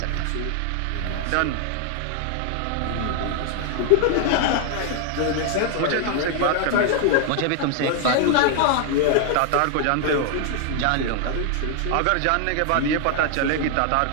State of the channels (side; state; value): both; different; correlation 0.00